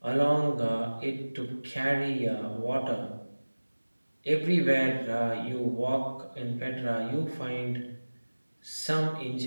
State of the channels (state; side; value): inverted; both; correlation -1.00